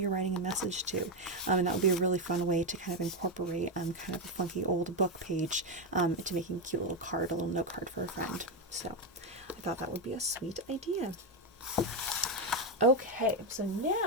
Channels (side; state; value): both; normal; correlation 0.07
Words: you're writing a message to, and that would be a really fun way to kind of incorporate kind of a funky old book page into making a cute little card, a little note card for a friend. So I thought that would be a sweet idea. Okay, so